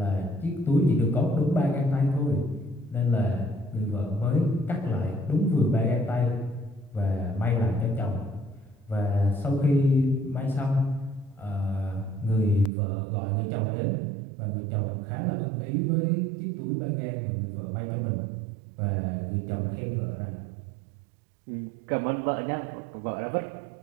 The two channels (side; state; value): left; drops out; at 12.7 s